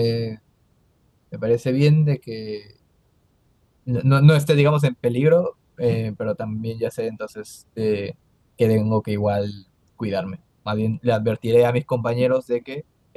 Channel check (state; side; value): identical; both; correlation 1.00